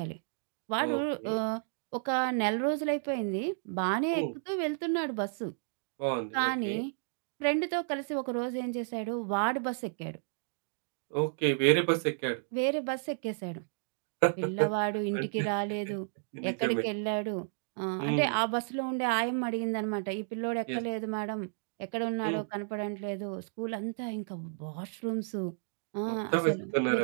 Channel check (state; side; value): silent; left; digital silence